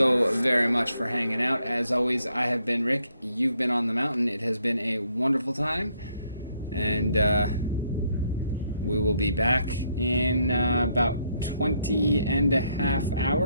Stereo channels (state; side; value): inverted; both; correlation -0.72